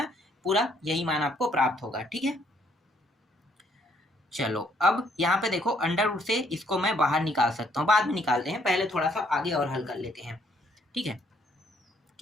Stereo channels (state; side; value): normal; both; correlation 0.68